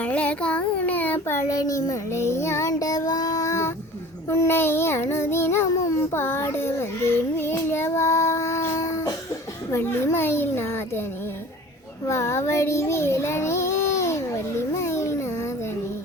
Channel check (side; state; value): both; normal; correlation 0.43